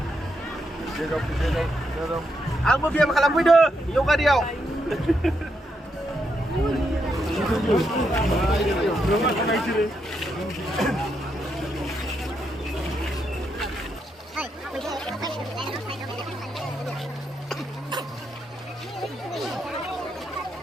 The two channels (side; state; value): both; normal; correlation 0.80